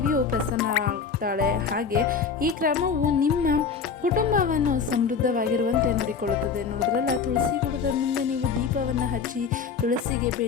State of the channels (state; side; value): quieter; right; 5.9 dB